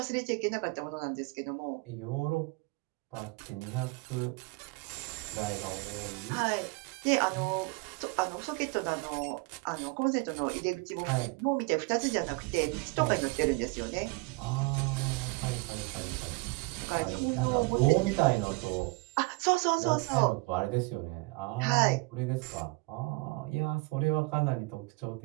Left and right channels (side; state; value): left; quieter; 26.8 dB